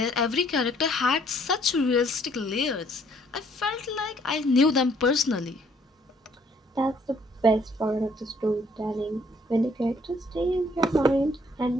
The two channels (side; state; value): both; normal; correlation 0.64